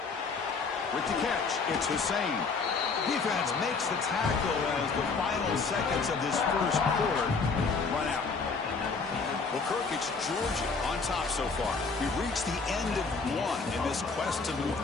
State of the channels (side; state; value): right; quieter; 4.6 dB